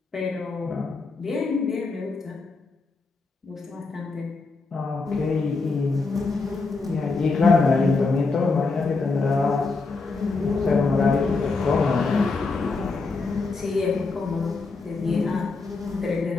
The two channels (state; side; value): quieter; right; 4.0 dB